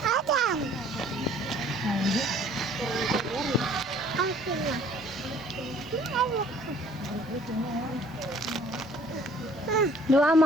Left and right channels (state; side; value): normal; both; correlation 0.55